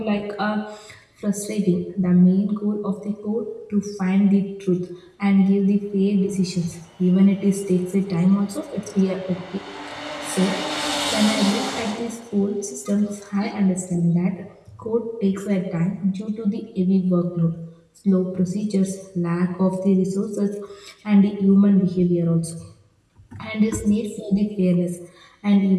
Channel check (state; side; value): identical; both; correlation 1.00